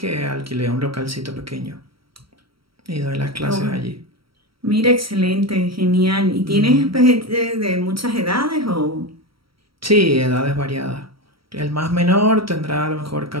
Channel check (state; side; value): late; left; 0.75 ms